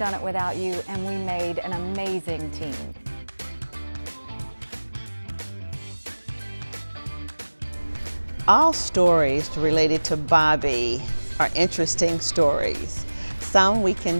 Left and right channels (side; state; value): both; inverted; correlation -1.00